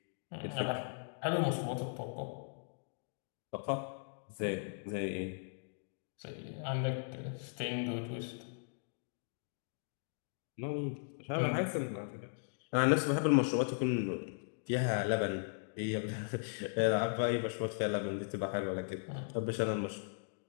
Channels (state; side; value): silent; right; digital silence